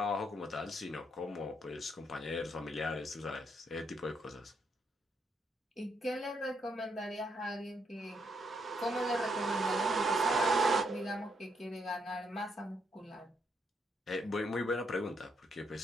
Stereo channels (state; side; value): normal; both; correlation 0.76